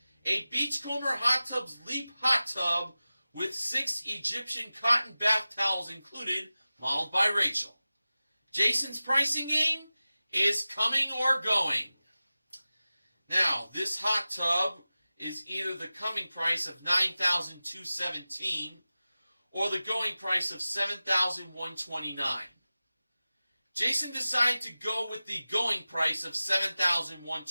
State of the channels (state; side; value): inverted; both; correlation -0.96